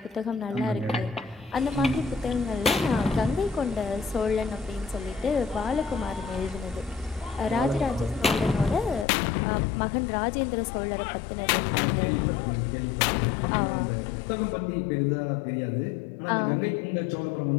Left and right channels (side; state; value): right; drops out; at 9.1 s